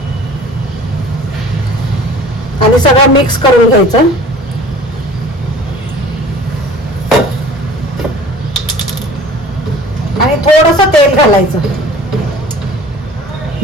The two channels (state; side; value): normal; both; correlation 0.46